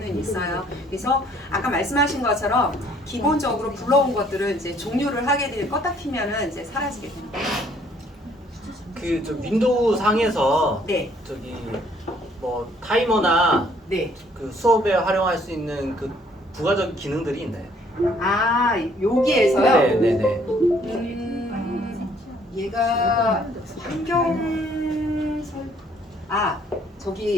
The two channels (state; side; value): normal; both; correlation 0.62